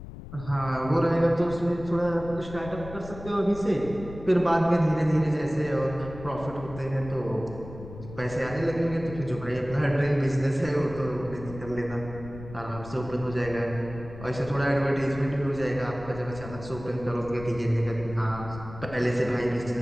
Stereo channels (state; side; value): noise; left; rumble, 13 dB below the sound